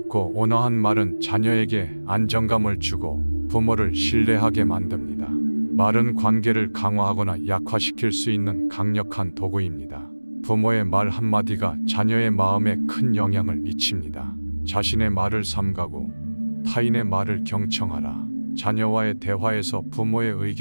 온화한 말은 자녀에게 안정감을 주고 부모를 신뢰하게 만듭니다. 말은 관계를 강화하거나 약화시킬 수 있는 강력한 도구입니다. 부모의 말 한마디가 자녀의 마음에 큰 영향을 미칩니다. 자신의 말을 삼가고 타인의 말을 경청하라. 자녀와의 대화에서 부모의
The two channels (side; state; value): both; inverted; correlation -1.00